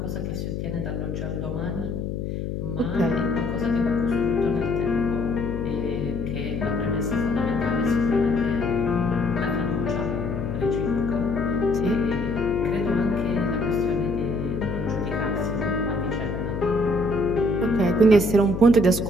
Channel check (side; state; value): left; noise; hum, 4 dB below the sound